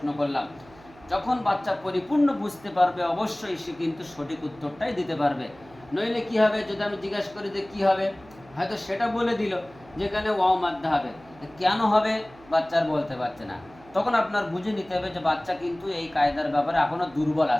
করলাম। যখন বাচ্চা পরিপূর্ণ বুঝতে পারবে, অবশ্যই সে কিন্তু সঠিক উত্তরটাই দিতে পারবে। নইলে কি হবে, যদি আমি জিজ্ঞাসা করি যে কি হবে, হয়তো সেটা বলে দিল যেখানে ওয়াও মাদ্দা হবে, কেন হবে বাচ্চার বলতে পারছে না। তখন আপনার বুঝে নিতে হবে যে বাচ্চা কিন্তু এই কায়দার ব্যাপারে এখনো দুর্বল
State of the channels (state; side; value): noise; right; hum, 24 dB below the sound